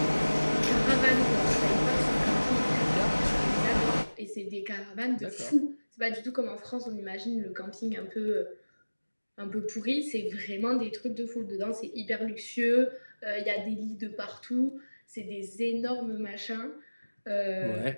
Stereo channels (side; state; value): both; inverted; correlation -1.00